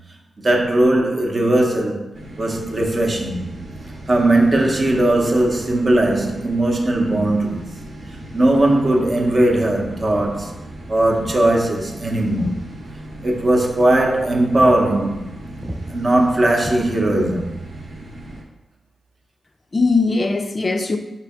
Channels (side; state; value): both; normal; correlation 0.92